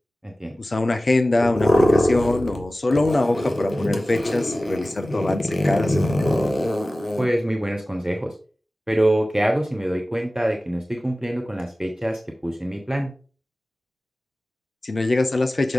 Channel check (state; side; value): normal; both; correlation 0.96